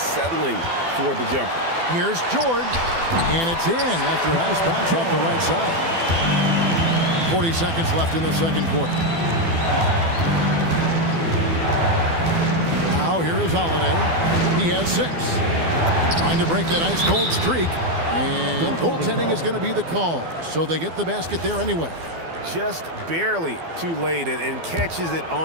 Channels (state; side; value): late; left; 12 ms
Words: for the jumper. Here's George, and it's in after a nice bounce off the right side. 40 seconds left in the second quarter. Now here is Holiday. He has 6. Trying to break that ice-cold streak. And goaltending is going to be the call. So they get the basket there anyway. Just barely too late and catches it